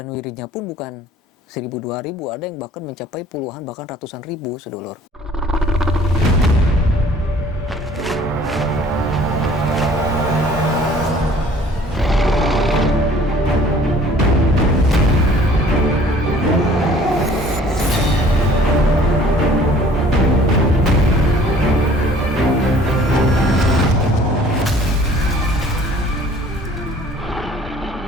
wiridnya pun bukan 1000, 2000, ada yang bahkan mencapai puluhan bahkan ratusan ribu, sedulur.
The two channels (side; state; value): both; normal; correlation 0.53